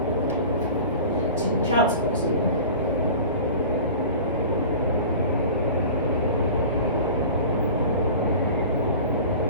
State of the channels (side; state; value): both; inverted; correlation -0.38